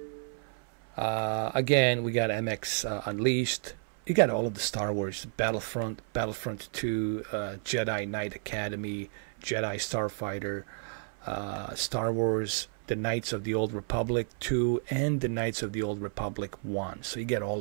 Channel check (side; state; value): left; silent; 57 dB below the other